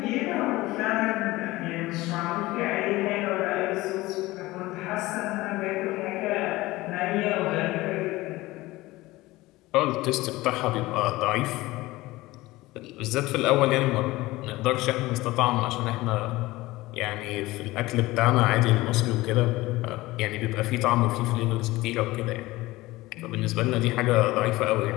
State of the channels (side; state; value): right; quieter; 19.2 dB